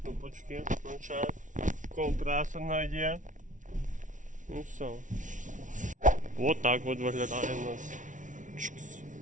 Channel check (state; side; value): late; left; 0.37 ms